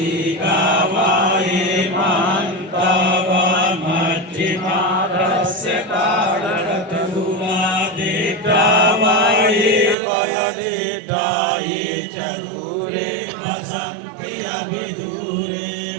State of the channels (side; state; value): left; drops out; at 10.0 s